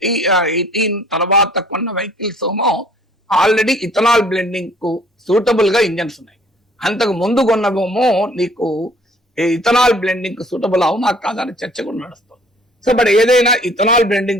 తర్వాత కొన్న వెహికల్స్ ఏమో ఆల్రెడీ ఇథనాల్ బ్లెండింగ్ కు సూటబుల్ గా ఇంజన్స్ ఉన్నాయి. అంతకు ముందు కొన్నవేమో నీకు ఇథనాల్ బ్లెండింగ్ కు సూటబుల్ అవునా కాదని చర్చ కూడా నడుస్తుంది. సో బట్ ఏదైనా ఇథనాల్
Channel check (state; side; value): normal; both; correlation 0.56